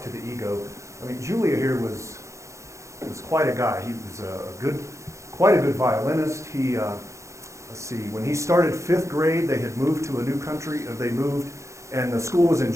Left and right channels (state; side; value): late; left; 0.14 ms